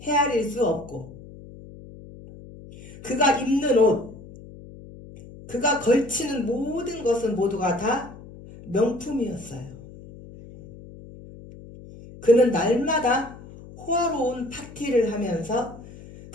헤아릴 수 없고, 그가 입는 옷, 그가 걸치는 모든 것은 모두가 다 명품이었어요. 그는 날마다 호화로운 파티를 하면서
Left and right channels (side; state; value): left; noise; hum, 17 dB below the sound